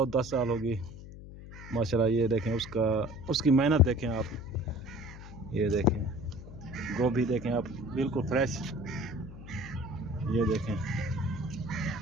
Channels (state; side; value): noise; left; hum, 14 dB below the sound